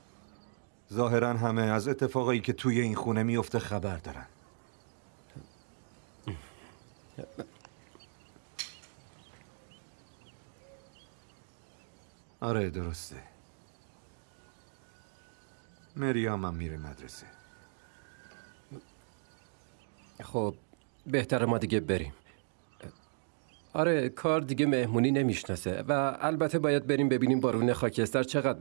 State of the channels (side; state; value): left; silent; digital silence